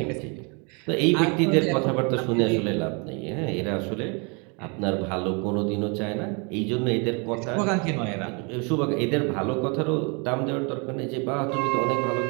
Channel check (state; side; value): quieter; left; 33.1 dB